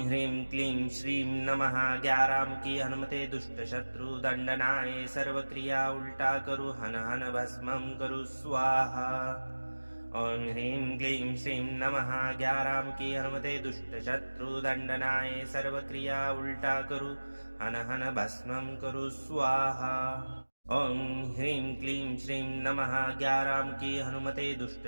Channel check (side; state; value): both; inverted; correlation -1.00